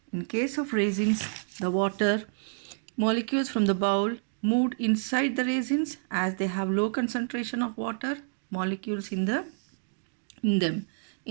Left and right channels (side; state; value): left; silent; digital silence